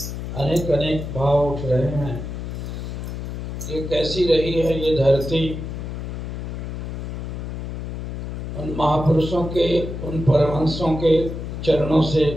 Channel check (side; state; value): left; noise; hum, 6 dB below the sound